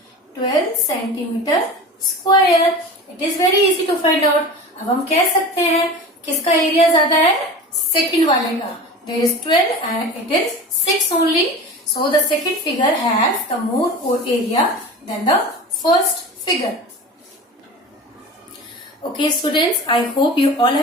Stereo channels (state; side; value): normal; both; correlation 0.34